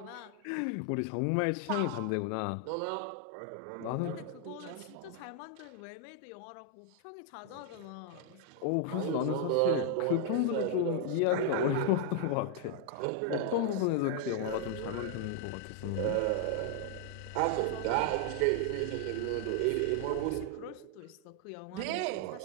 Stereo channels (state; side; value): different; both; correlation 0.00